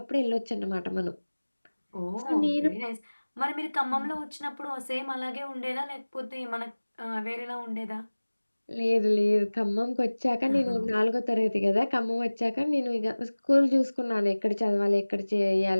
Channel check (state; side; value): inverted; both; correlation -1.00